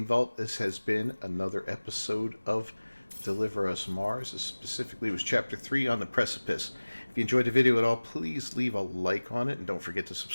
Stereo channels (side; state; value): both; inverted; correlation -1.00